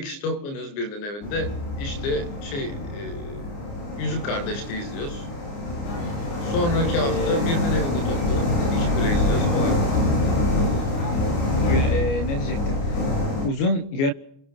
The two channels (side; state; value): right; late; 29 ms